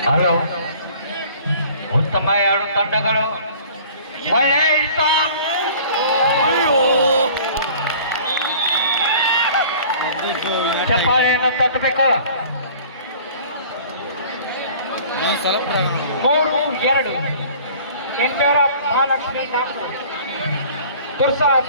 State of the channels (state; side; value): inverted; both; correlation -0.48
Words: ಹಲೋ, ಉತ್ತಮ ಎರಡು ತಂಡಗಳು ಚಪ್ಪಾಳೆಯನ್ನು ತಟ್ಟಬೇಕು. 3-2 ಇನ್ ಫೇವರ್ ಆಫ್ ಮಹಾಲಕ್ಷ್ಮಿ ನಾಗ್ನೂರ್.